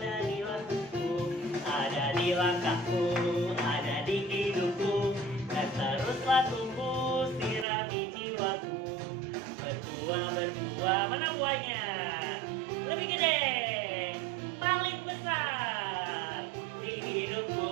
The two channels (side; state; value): left; drops out; at 7.7 s